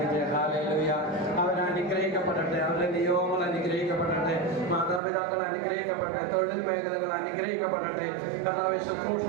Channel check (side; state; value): left; drops out; at 5.0 s